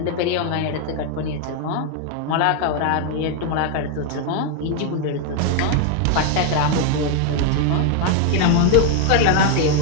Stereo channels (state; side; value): different; both; correlation 0.00